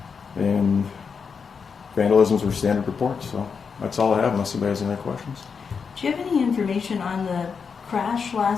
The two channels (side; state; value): right; quieter; 5.9 dB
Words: And vandalisms were standard reports. So that's all I have, unless anybody has any other questions. Do you have any information on the crash